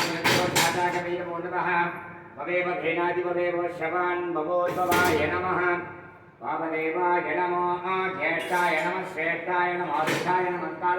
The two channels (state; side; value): identical; both; correlation 1.00